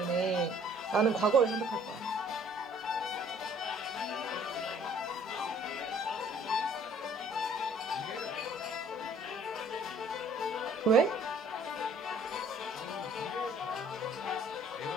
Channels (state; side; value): normal; both; correlation 0.57